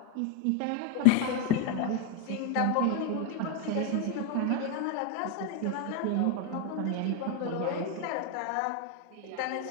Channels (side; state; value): both; different; correlation 0.01